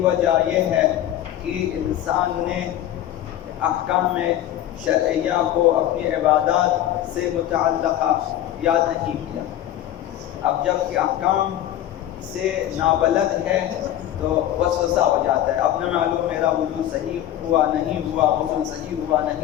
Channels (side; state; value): right; quieter; 12.3 dB